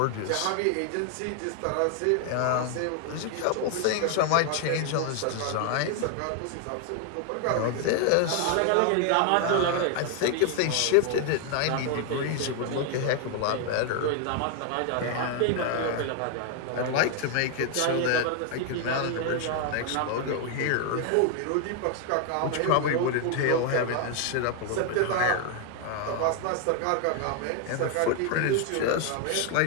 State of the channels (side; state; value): both; different; correlation 0.00